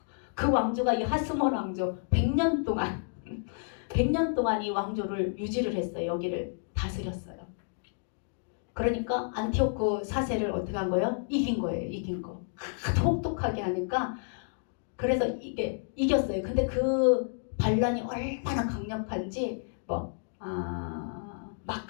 그 왕조가 이 하스몬 왕조 100년 동안 이 왕조를 유지를 했어요. 여기를 다스렸어요. 그러니까 안티오쿠 4세를 어떻게 한 거예요? 이긴 거예요. 이긴 거. 하도 혹독하게 하니까 그래서 이게 이겼어요. 근데 그 반란이 얼마나 강력한지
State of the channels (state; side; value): silent; right; digital silence